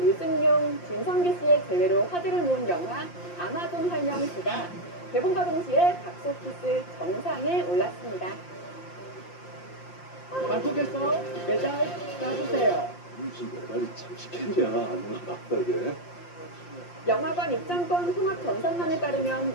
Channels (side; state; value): right; late; 5.7 ms